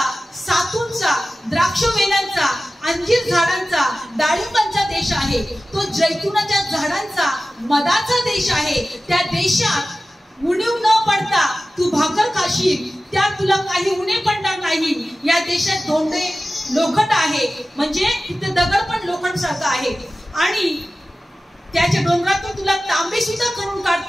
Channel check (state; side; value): normal; both; correlation 0.95